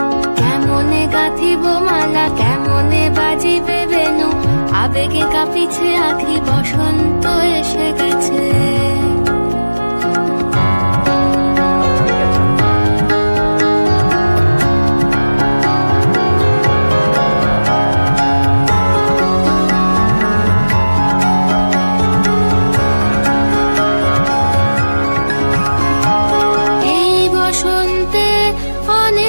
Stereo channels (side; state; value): both; inverted; correlation -1.00